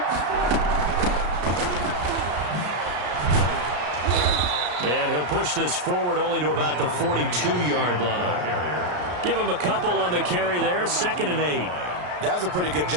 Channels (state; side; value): late; left; 33 ms